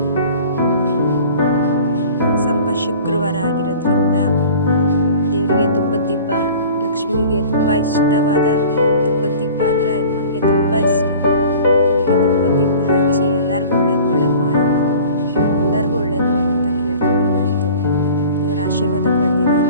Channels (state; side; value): inverted; both; correlation -0.44